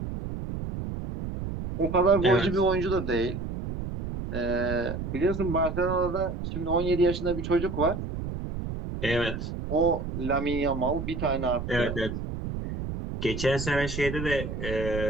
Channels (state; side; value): noise; right; rumble, 6 dB below the sound